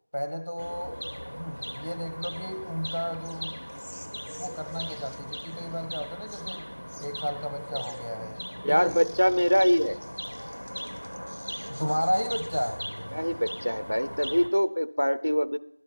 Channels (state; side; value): inverted; both; correlation -1.00